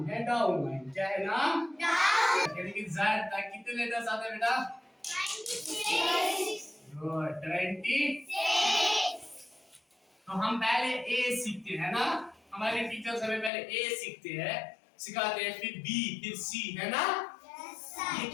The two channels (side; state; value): right; drops out; at 13.5 s